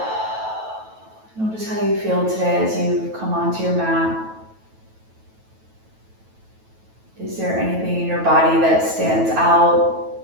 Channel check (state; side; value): late; left; 9.2 ms